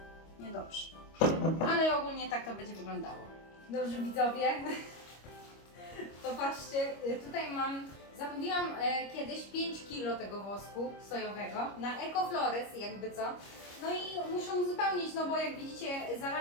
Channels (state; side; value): late; right; 25 ms